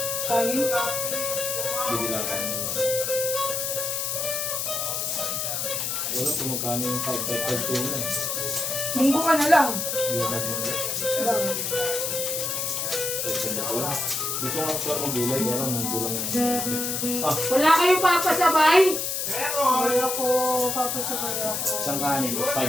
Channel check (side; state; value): left; noise; hiss, 1 dB below the sound